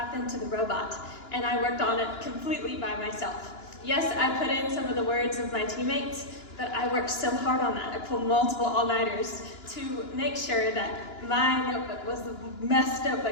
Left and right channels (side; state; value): right; late; 2.9 ms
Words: to the robot, and I worked on it completely by myself. Yes, I put in some of the words of my teammates, but I worked so hard on that. I pulled multiple all-nighters to make sure that my notebook was the best